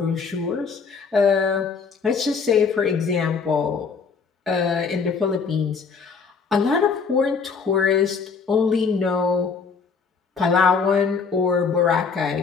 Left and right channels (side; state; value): right; quieter; 5.4 dB